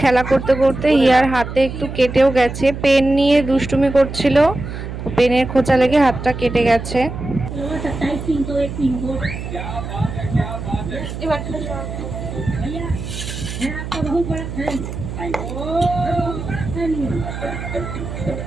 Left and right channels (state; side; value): noise; right; hum, 8 dB below the sound